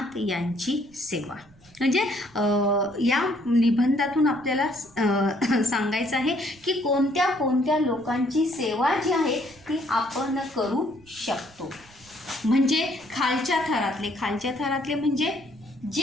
यांची सेवा. म्हणजे या निबंधातून आपल्याला सांगायचं आहे की कोणत्या कोणत्या लोकांची सेवा जी आहे ती आपण करू शकतो. म्हणजे खालच्या थरातले म्हणजे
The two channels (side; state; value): right; noise; rumble, 28 dB below the sound